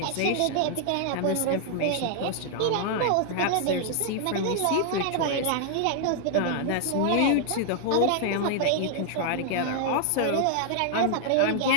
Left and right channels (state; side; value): different; both; correlation 0.00